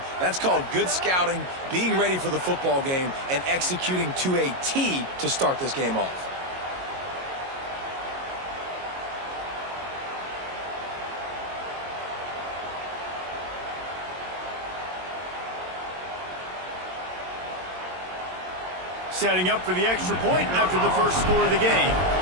That's called good scouting, being ready for the football game, and executing to a T to start this game off. Setting up for the extra point after the first score of the game.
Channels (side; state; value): left; late; 22 ms